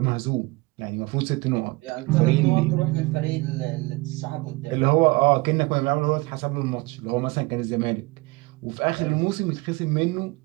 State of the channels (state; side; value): quieter; left; 24.2 dB